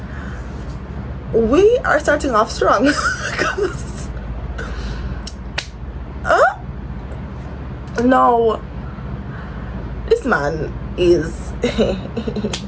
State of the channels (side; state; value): both; identical; correlation 1.00